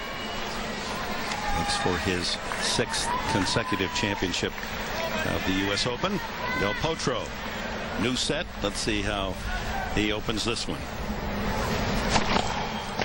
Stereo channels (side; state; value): both; identical; correlation 1.00